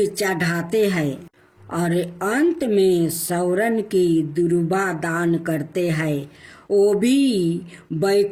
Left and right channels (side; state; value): both; identical; correlation 1.00